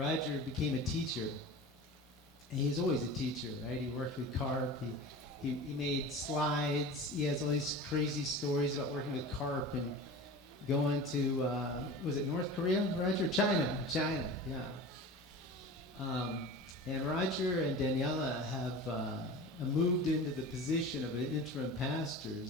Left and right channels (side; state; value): both; normal; correlation 0.34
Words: became a teacher. And he's always a teacher, right? He worked with carp. He made slides. He has all these crazy stories about working with carp and going to, was it North Korea, Roger? China, yeah. And Roger and Daniela have moved into the position of an interim